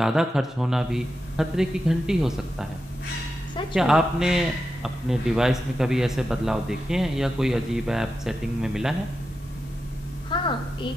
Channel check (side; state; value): both; normal; correlation 0.89